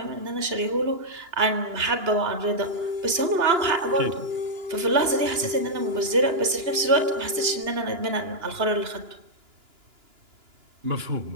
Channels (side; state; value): left; late; 2.9 ms